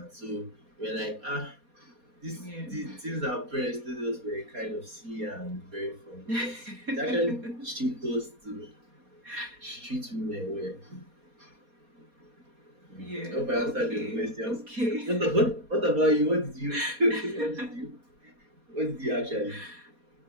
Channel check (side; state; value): left; late; 4.2 ms